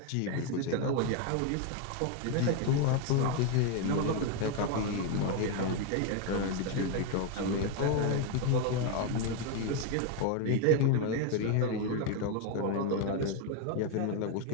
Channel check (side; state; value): both; different; correlation 0.01